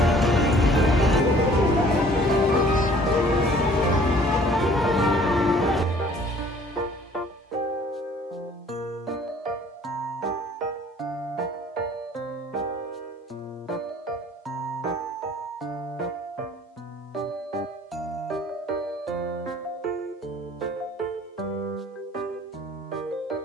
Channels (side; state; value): both; normal; correlation 0.54